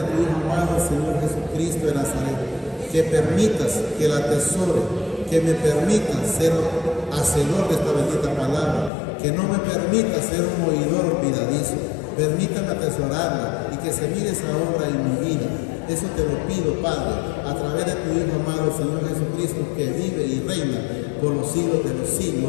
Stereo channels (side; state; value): right; drops out; at 8.9 s